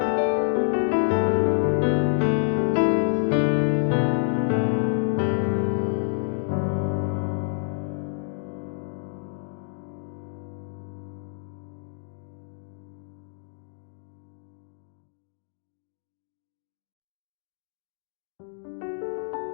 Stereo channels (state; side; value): silent; right; digital silence